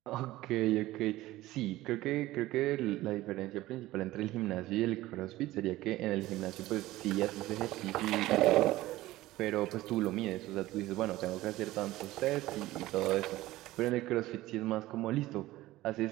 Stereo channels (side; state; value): left; quieter; 17.0 dB